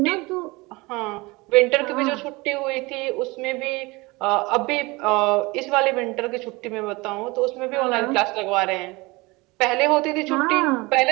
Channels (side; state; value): left; quieter; 23.8 dB